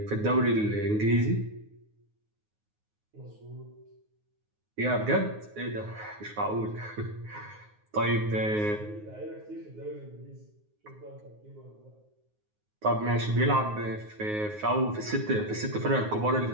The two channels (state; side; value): late; left; 9.5 ms